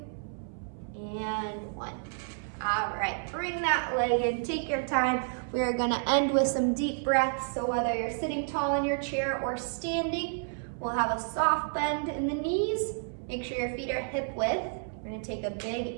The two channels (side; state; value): left; silent; 58 dB below the other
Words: and 1. All right, bring that leg in, take your time. We are gonna end with some deep breaths. So whether you're sitting tall in your chair or standing, we'll have a soft bend in the knees. Make sure your feet are hip width. We're gonna take a big